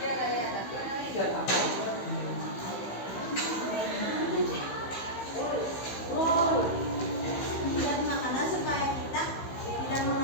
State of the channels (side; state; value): right; late; 15 ms